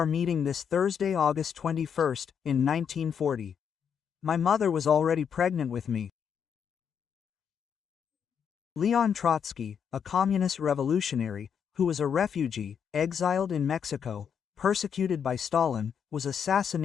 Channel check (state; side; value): quieter; right; 7.6 dB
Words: meeting this Thursday, August 21st, in 1940. My mother was already pregnant with me. Leon Trotsky, a communist revolutionary, who was a refugee, exiled in Mexico, persecuted by Stalin, was